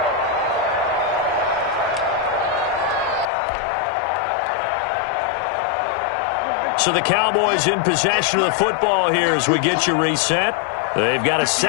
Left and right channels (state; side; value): drops out; right; at 3.2 s